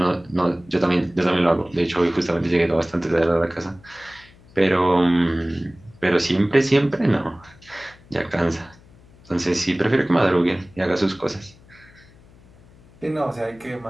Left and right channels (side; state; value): left; noise; hum, 26 dB below the sound